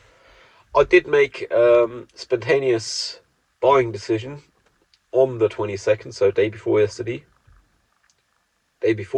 I did make spontaneous buying decision on the 22nd, so day before yesterday. Day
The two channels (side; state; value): both; identical; correlation 1.00